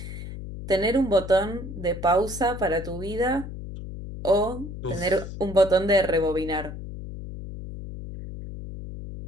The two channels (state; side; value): noise; left; hum, 10 dB below the sound